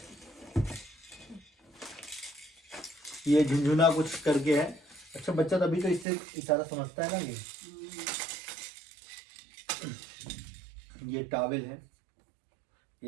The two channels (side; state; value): left; drops out; at 6.1 s